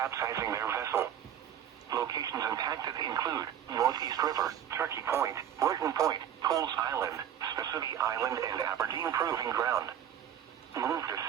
their vessel. Locations impacted include Northeast River, Turkey Point, Burton Point, Pools Island, Spessity Island, and Aberdeen Proving Ground. Move to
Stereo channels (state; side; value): quieter; left; 9.9 dB